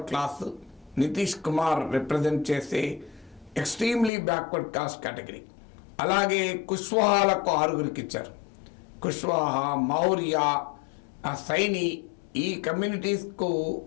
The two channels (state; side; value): drops out; right; at 4.1 s